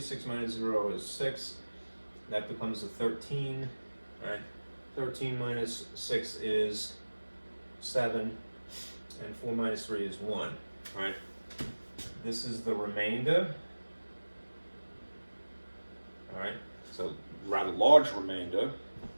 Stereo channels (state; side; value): inverted; both; correlation -1.00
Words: minus 0 is 6. That becomes a 13, right? 13 minus 6 is 7, and 4 minus 3 is 1, right? This is the remainder, all right? So rather large remainder,